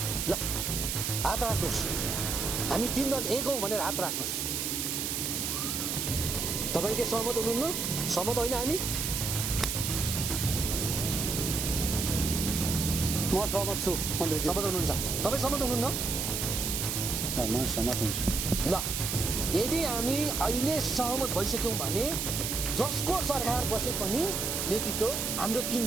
ल हात राख्नुहोस् हामी तीन दल एक हौँ भनेर हात राख्नुहोस् तपाईँ के सहमत हुनुहुन्न सहमत होइन हामी म सहमत छु मन्त्रीज्यू सहमत हुनुहुन्छ तपाईँ सहमत हुनुहुन्न म सहमत हुन्छु ल यदि हामी अहिले सहमत भइसक्यौँ भने जसको सरकार बसे पनि नेतृत्व हाम्रो 3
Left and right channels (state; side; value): noise; right; hiss, 1 dB below the sound